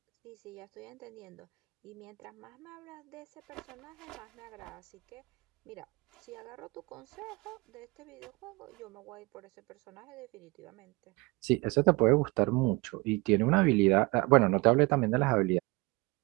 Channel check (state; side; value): quieter; left; 25.2 dB